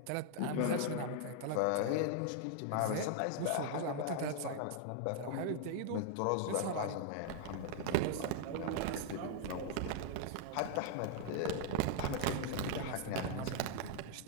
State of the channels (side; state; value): both; different; correlation 0.00